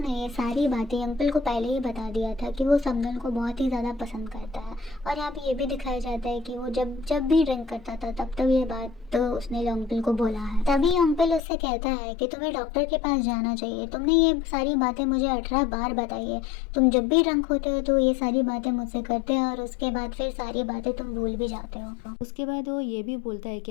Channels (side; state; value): right; drops out; at 11.4 s